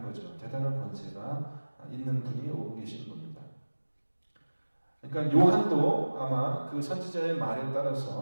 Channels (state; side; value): inverted; both; correlation -1.00